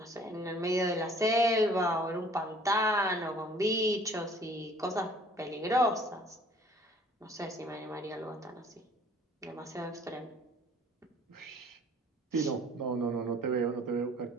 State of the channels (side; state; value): both; normal; correlation 0.54